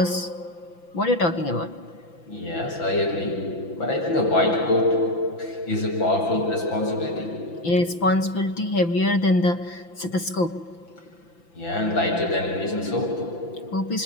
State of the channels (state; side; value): late; right; 5.9 ms